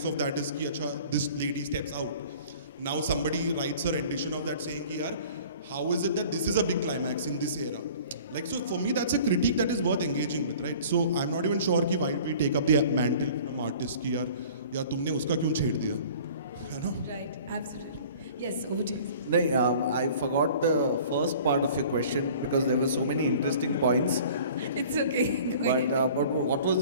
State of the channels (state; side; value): inverted; both; correlation -0.47